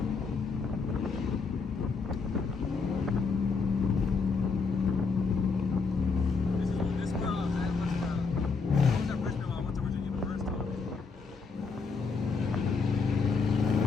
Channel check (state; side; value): quieter; right; 4.8 dB